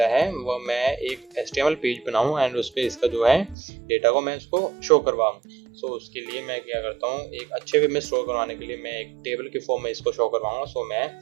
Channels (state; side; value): drops out; left; at 3.6 s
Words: है वो मैं एक HTML पेज बनाऊँ, एंड उस पर इसका जो है डेटा को मैं उसको शो करवाऊँ। सो उसके लिए मैं क्या करता हूँ, एक अच्छे वे में स्टोर करवाने के लिए मैं एक टेबल के फॉर्म में इसको शो करवाऊँगा। सो मैं